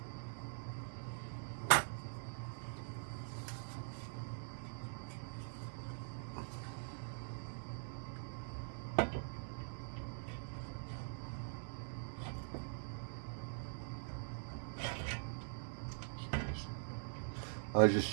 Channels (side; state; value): left; silent; digital silence